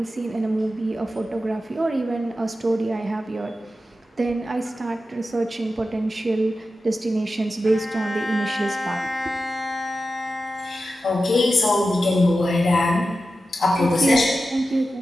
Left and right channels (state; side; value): normal; both; correlation 0.92